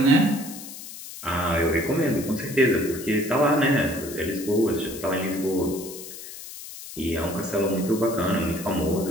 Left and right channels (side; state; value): left; noise; hiss, 13 dB below the sound